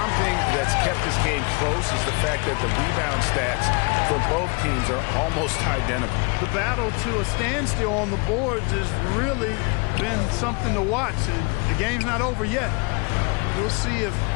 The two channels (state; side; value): quieter; right; 31.3 dB